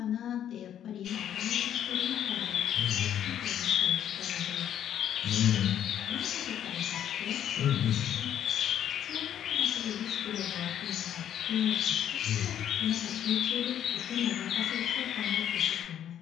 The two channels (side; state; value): right; quieter; 10.2 dB